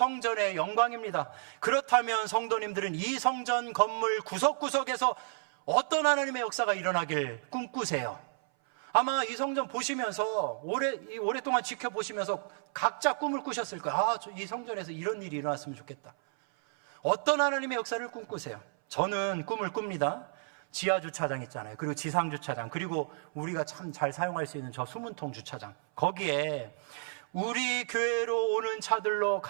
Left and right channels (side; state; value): left; silent; 57 dB below the other